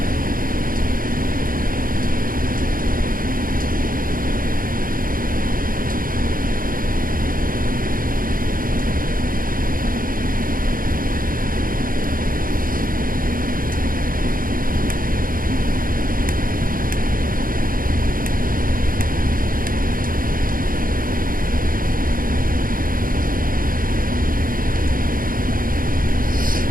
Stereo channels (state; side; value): late; left; 0.41 ms